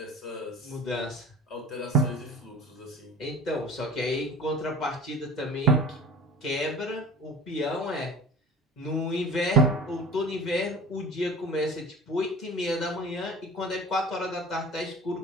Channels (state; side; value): normal; both; correlation 0.40